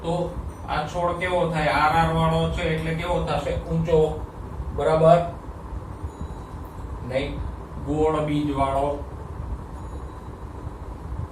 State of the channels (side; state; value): both; identical; correlation 1.00